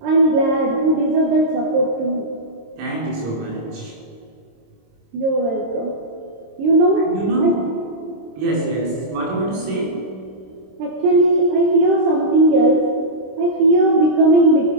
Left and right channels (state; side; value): late; left; 26 ms